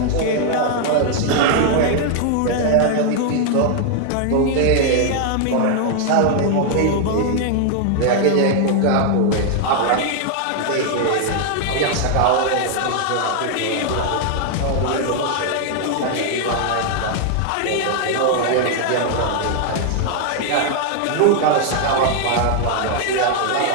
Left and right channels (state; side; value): different; both; correlation 0.00